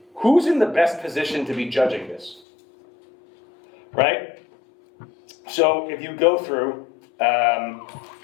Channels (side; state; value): right; drops out; at 2.4 s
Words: who's in the best position to be judging this? Right? So if you go through,